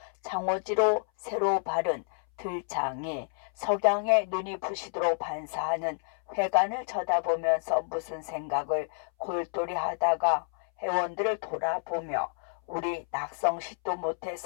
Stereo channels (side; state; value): right; silent; 58 dB below the other